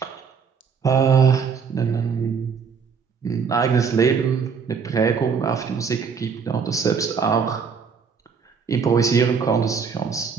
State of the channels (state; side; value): quieter; left; 6.0 dB